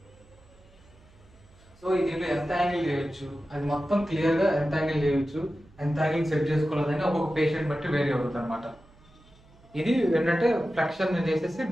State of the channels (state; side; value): noise; right; hum, 27 dB below the sound